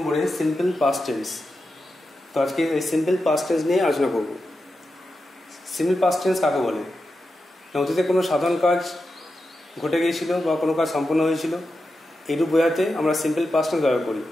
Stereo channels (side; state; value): both; normal; correlation 0.89